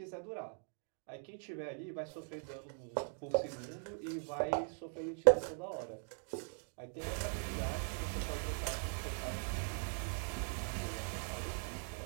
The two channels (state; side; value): silent; left; 51 dB below the other